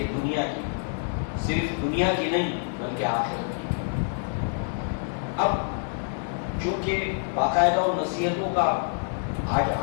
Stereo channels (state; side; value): silent; right; digital silence